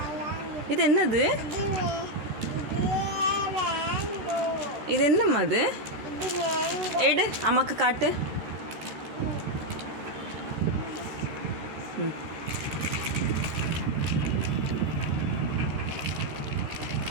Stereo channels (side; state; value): left; late; 13 ms